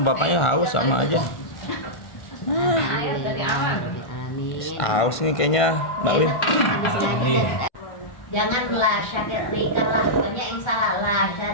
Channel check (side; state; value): right; late; 1.5 ms